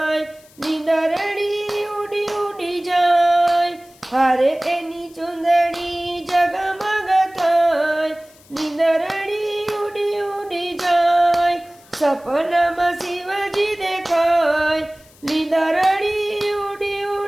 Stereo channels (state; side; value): noise; left; hiss, 27 dB below the sound